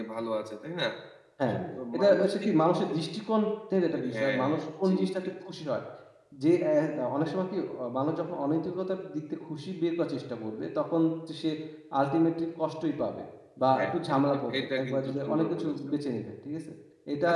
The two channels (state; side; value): identical; both; correlation 1.00